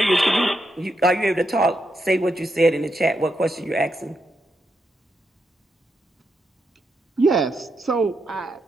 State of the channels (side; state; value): both; normal; correlation 0.83